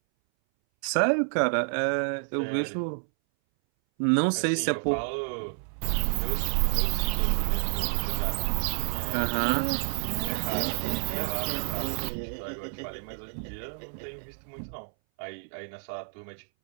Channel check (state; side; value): silent; left; 59 dB below the other